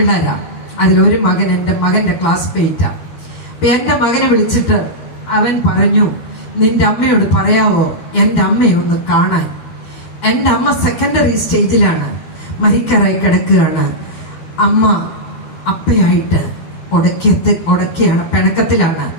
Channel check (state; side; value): late; right; 12 ms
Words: അതിലൊരു മകൻ എന്റെ മകന്റെ ക്ലാസ്മേറ്റാ. അപ്പൊ എന്റെ മകനെ വിളിച്ചിട്ട് അവൻ പറഞ്ഞു, നിന്റെ അമ്മയോട് പറയാവോ എന്റെ അമ്മയെ ഒന്ന് കാണാൻ? എന്റെ അമ്മ സെക്കൻഡറി സ്റ്റേജിലാണ്, മരിക്കാറായി കിടക്കുകയാണ്. അമ്മ അപ്പയായിട്ട് ഉടക്കിയാണ്, പിണക്കത്തിലാണ്.